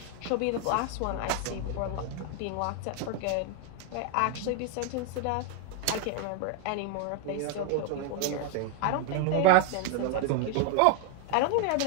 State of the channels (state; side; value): different; both; correlation 0.01